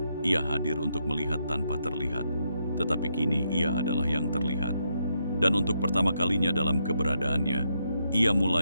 Ia hadir untuk melihat tanpa terlihat, tetapi kini ia adalah yang terlihat. Dan untuk pertama kalinya dalam keberadaannya, ia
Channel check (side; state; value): both; inverted; correlation -0.79